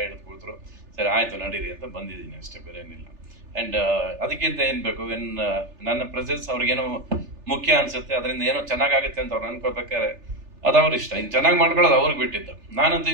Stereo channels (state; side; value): late; left; 3.4 ms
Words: ಹಿಡಿದು ಕೂತ್ರು. ಸರಿ ಆಯ್ತು ನಡೀರಿ ಅಂತ ಬಂದಿದ್ದೀನಿ ಅಷ್ಟೇ, ಬೇರೆ ಏನಿಲ್ಲ. ಆ್ಯಂಡ್ ಅದಕ್ಕಿಂತ ಏನು ಬೇಕು, ನನ್ನ ಪ್ರೆಸೆನ್ಸ್ ಅವ್ರಿಗೇನೋ ಮುಖ್ಯ ಅನ್ಸುತ್ತೆ, ಅದರಿಂದ ಏನೋ ಚೆನ್ನಾಗಾಗುತ್ತೆ ಅಂತ ಅವ್ರು ಅನ್ಕೋಬೇಕಾದ್ರೆ ಅದು ಅವ್ರ ಇಷ್ಟ. ಇನ್ನು ಚೆನ್ನಾಗಿ ಮಾಡ್ಕೊಳ್ಳೋದು ಅವ್ರಿಗೆ ಬಿಟ್ಟಿದ್ದು. ನಾನಂತೂ